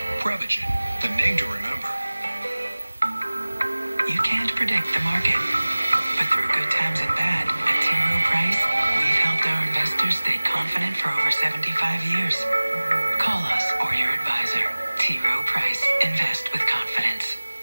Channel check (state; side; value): inverted; both; correlation -1.00